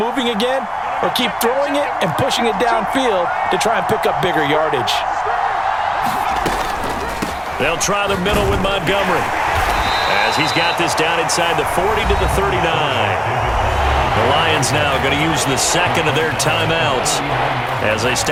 again, or keep throwing it and pushing it downfield to try and pick up bigger yardage. They'll try the middle with Montgomery, as he's got this down inside the 40 to the 39. The Lions now going to use the second of their timeouts as they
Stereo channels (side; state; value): both; identical; correlation 1.00